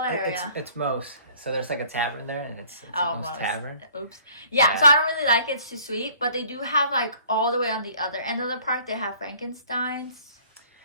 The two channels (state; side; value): inverted; both; correlation -0.55